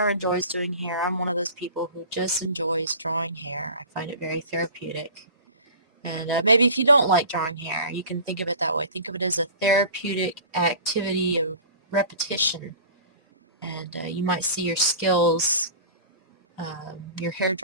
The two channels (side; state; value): both; inverted; correlation -0.39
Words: or enjoys doing hair. I'm one of those people who just enjoys drawing hair. I find it very therapeutic. And maybe if you don't like drawing hair, you can think of it that way. Think of it as a therapeutic activity of repetition. And you might see your skills, your hair